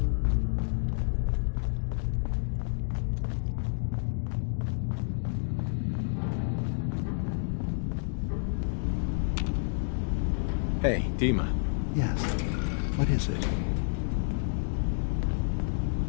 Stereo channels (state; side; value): silent; right; digital silence